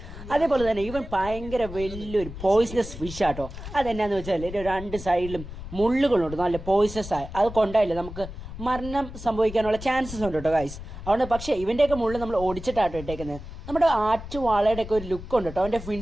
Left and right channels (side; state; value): left; noise; rumble, 11 dB below the sound